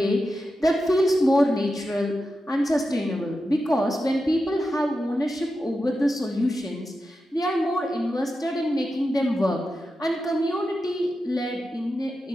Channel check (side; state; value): both; normal; correlation 0.90